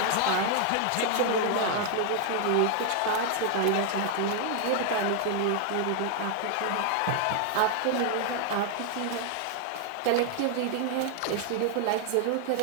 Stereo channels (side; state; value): both; different; correlation 0.00